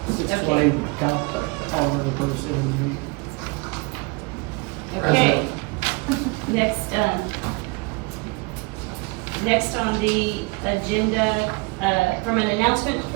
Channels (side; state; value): left; quieter; 27.7 dB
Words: 620, count all of the person. Okay. Next on the agenda, from an announcement